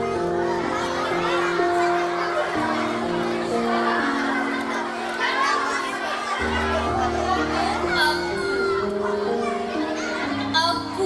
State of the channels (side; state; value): both; identical; correlation 1.00